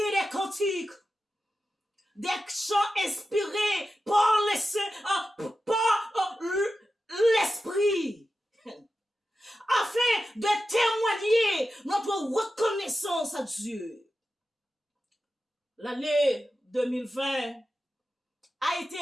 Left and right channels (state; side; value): normal; both; correlation 0.92